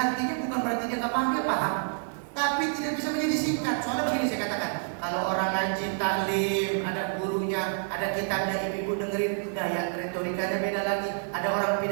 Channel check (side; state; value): left; silent; digital silence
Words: bukan berarti dia nggak paham, dia paham, tapi tidak bisa menjadi singkat. Soalnya begini saya katakan, kalau orang ngaji taklim, ada gurunya, ada kitabnya, ibu-ibu dengerin, gaya retorikanya beda lagi. Ada orang